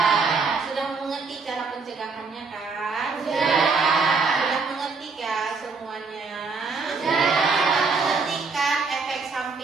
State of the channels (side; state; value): left; quieter; 4.5 dB